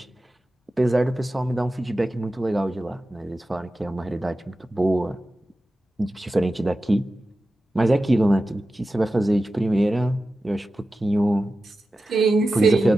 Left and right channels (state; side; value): normal; both; correlation 0.93